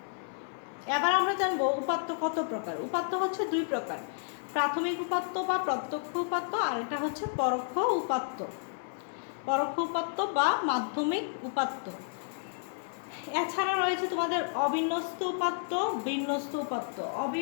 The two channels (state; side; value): silent; right; digital silence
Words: এবার আমরা জানবো উপাত্ত কত প্রকার। উপাত্ত হচ্ছে দুই প্রকার, প্রাথমিক উপাত্ত বা প্রত্যক্ষ উপাত্ত, আর এটা হচ্ছে পরোক্ষ উপাত্ত। পরোক্ষ উপাত্ত বা মাধ্যমিক উপাত্ত। এছাড়া রয়েছে তোমাদের অবিন্যস্ত উপাত্ত, বিন্যস্ত উপাত্ত।